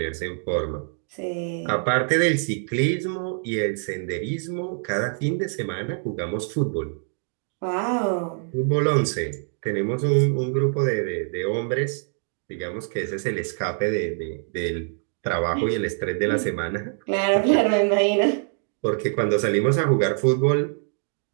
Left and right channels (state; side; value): silent; left; 58 dB below the other